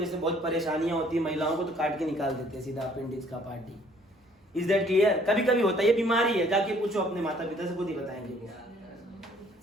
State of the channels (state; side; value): normal; both; correlation 0.60